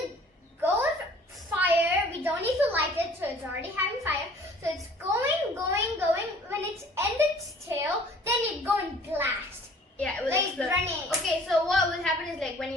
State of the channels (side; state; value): both; normal; correlation 0.52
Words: go with fire. We don't need to light it, so it's already having fire. So it's going. When it's end its tail, then it go and blast. Yeah, it will Like explode. grenade. Okay, so what will happen is like when